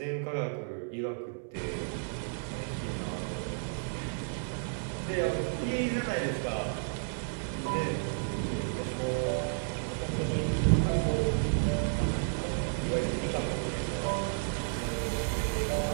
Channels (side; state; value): left; silent; digital silence